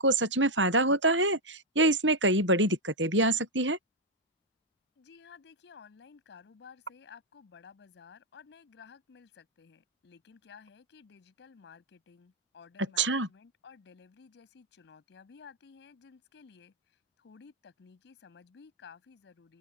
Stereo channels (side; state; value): both; normal; correlation -0.01